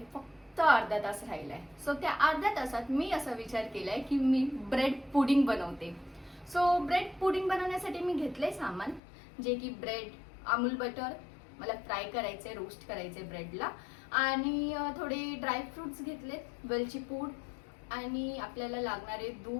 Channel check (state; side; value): drops out; right; at 9.0 s